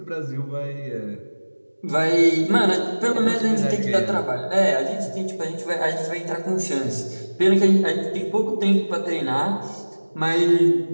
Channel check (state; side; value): inverted; both; correlation -1.00